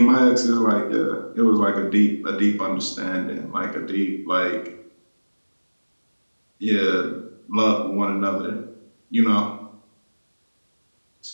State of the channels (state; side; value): inverted; both; correlation -1.00